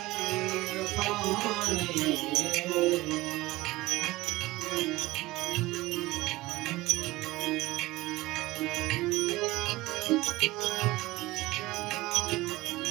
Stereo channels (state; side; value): quieter; left; 19.2 dB